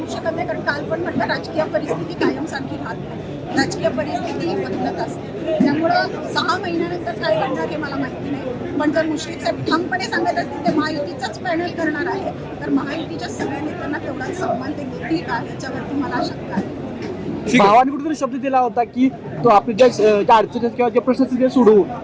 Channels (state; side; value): identical; both; correlation 1.00